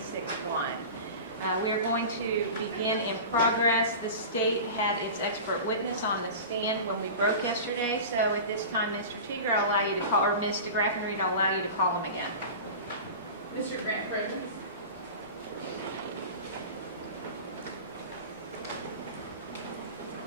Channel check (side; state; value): both; inverted; correlation -0.32